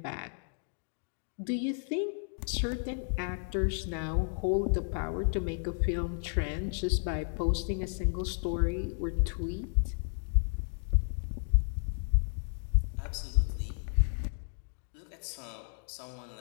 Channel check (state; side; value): silent; right; digital silence